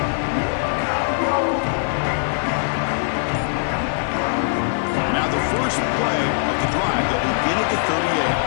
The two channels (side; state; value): right; silent; digital silence